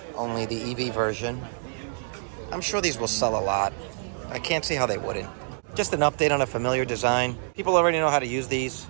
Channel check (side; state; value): left; silent; digital silence